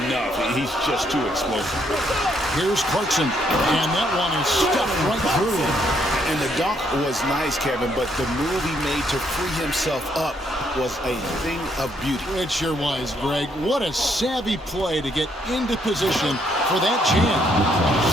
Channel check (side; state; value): both; normal; correlation 0.72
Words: He's just too explosive. Here's Clarkson, and that one is stuffed right through. And the dunk was nice, Kevin, but the move he made to free himself up was a thing of beauty. It sure was, Greg. What a savvy play to get into position for that jam.